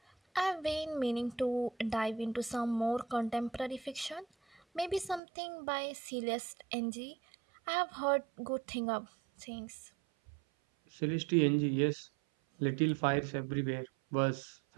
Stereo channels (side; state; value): left; drops out; at 5.2 s